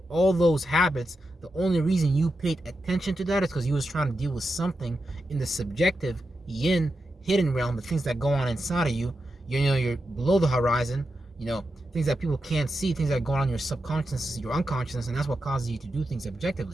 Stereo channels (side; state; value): both; normal; correlation 0.88